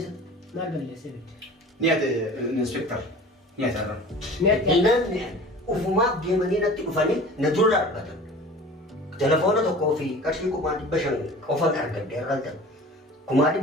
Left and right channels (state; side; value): normal; both; correlation 0.41